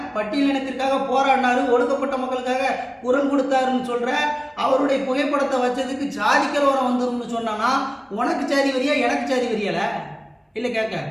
பட்டியலினத்திற்காக போராடினாரு, ஒடுக்கப்பட்ட மக்களுக்காக குரல் கொடுத்தாருன்னு சொல்ற அவருடைய புகைப்படத்தை வச்சதுக்கு ஜாதி கலவரம் வந்துரும்னு சொன்னா உனக்கு சாதி வரியா எனக்கு சாதி வரியால இல்லை கேட்க.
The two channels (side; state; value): both; identical; correlation 1.00